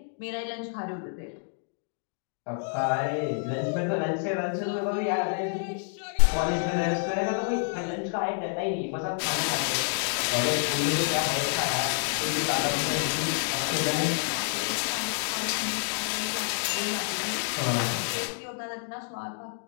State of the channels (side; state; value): right; silent; digital silence